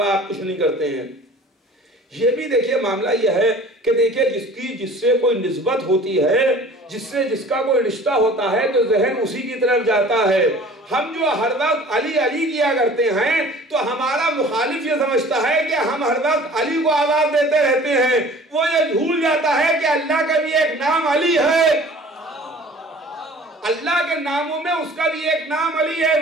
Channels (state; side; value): normal; both; correlation 0.47